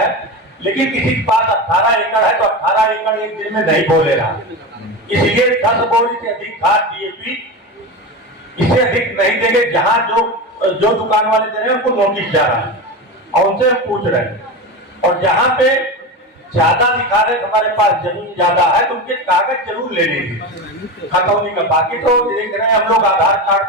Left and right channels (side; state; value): both; normal; correlation 0.23